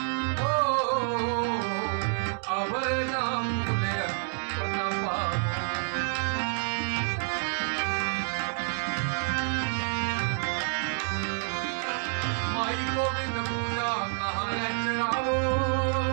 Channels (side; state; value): left; silent; 59 dB below the other